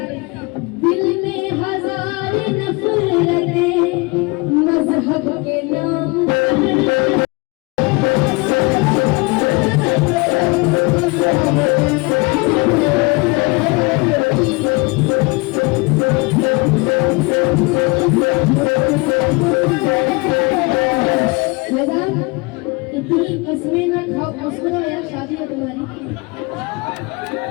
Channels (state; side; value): quieter; right; 27.0 dB